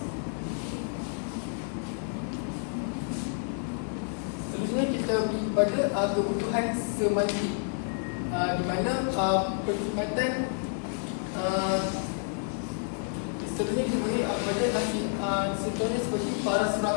kita pergi kepada kebutuhan semantik, di mana perkhidmatan seterusnya kita beri kepada contohnya seperti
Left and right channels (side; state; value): right; silent; 57 dB below the other